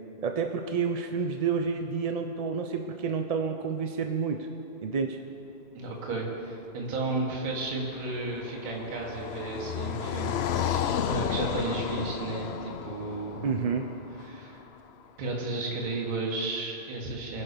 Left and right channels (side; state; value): right; late; 3.0 ms